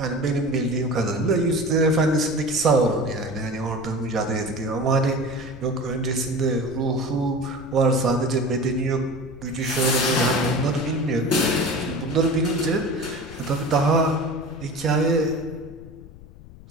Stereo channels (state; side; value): noise; left; rumble, 18 dB below the sound